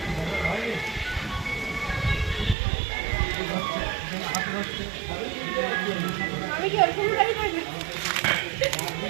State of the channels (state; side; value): drops out; left; at 2.6 s